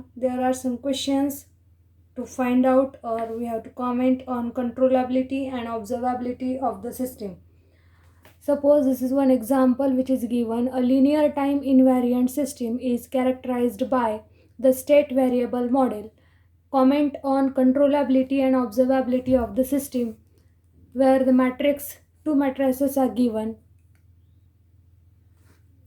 there are some questions to find out, or we have to comment on controllability and observability of the system. Suppose this is one example which is given. A linear time invariant system is characterized by the state variable model. Comment on controllability and observability of the system, where the two matrices are given.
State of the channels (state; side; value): identical; both; correlation 1.00